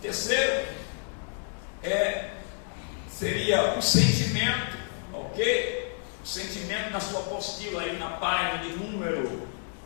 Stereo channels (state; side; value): silent; right; 58 dB below the other